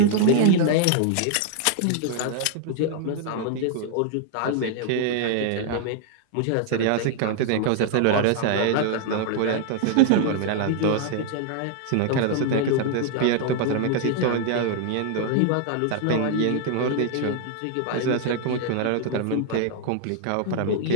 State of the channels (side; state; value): both; different; correlation 0.00